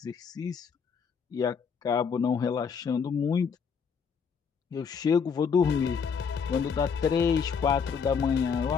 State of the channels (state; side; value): quieter; right; 6.2 dB